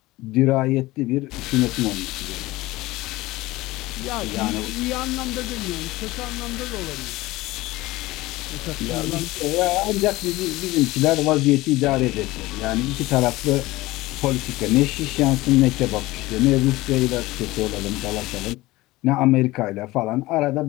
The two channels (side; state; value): right; quieter; 19.1 dB